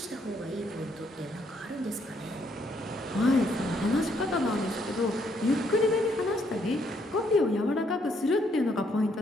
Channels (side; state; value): both; normal; correlation 0.71